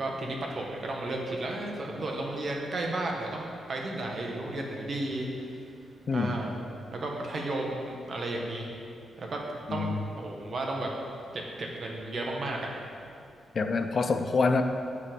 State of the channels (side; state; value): both; normal; correlation 0.83